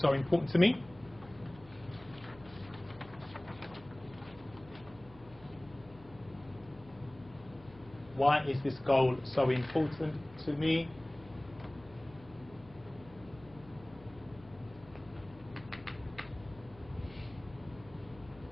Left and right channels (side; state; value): left; noise; hum, 21 dB below the sound